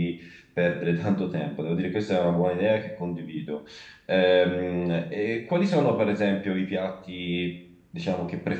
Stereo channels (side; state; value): both; identical; correlation 1.00